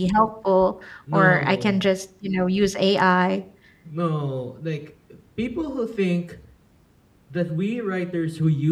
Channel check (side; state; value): both; identical; correlation 1.00